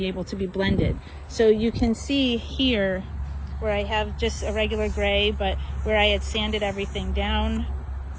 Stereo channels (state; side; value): identical; both; correlation 1.00